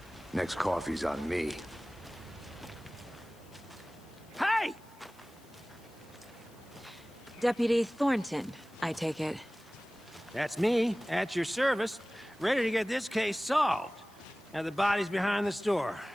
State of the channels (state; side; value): noise; left; hiss, 27 dB below the sound